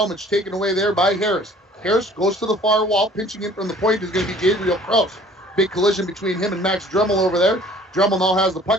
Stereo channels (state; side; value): normal; both; correlation 0.52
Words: taken away there by Harris. Harris goes to the far wall. Pinching in from the point is going to be Gabriel Krause. Big collision between him and Max Dremel over there. Dremel now has the